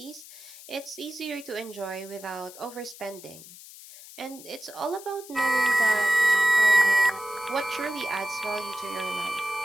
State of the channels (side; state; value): left; noise; hiss, 17 dB below the sound